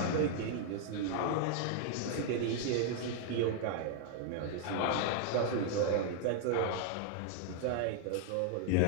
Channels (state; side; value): different; both; correlation 0.00